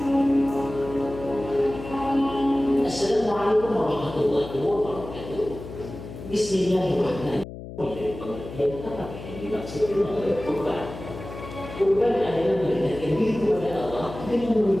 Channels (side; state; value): left; noise; hum, 12 dB below the sound